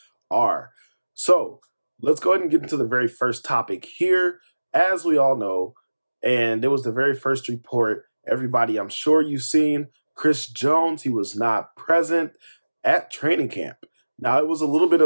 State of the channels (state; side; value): inverted; both; correlation -1.00